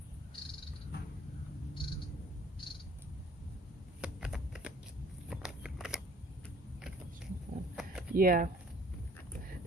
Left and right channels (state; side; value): normal; both; correlation 0.54